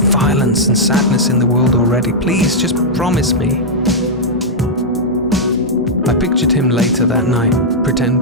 and sadness in the world already. Please, just promise me. I pictured him later that night,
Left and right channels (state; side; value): normal; both; correlation -0.07